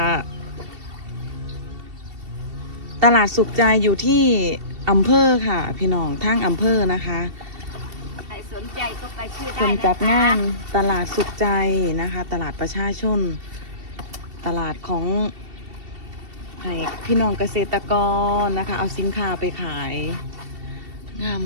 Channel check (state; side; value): late; left; 2.7 ms